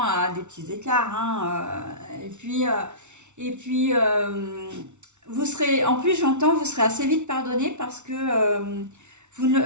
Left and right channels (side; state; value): left; late; 0.83 ms